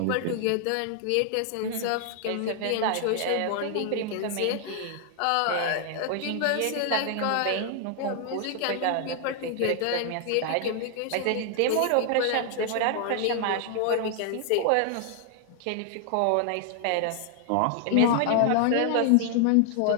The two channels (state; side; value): different; both; correlation 0.00